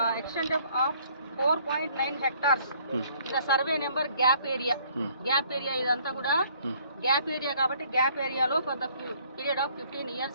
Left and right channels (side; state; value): both; inverted; correlation -0.61